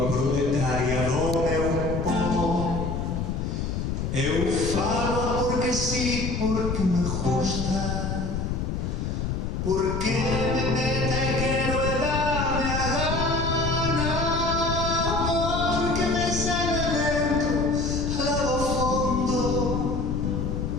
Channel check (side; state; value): left; noise; rumble, 2 dB below the sound